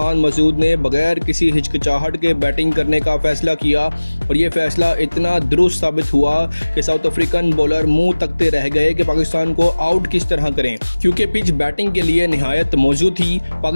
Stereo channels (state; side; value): inverted; both; correlation -1.00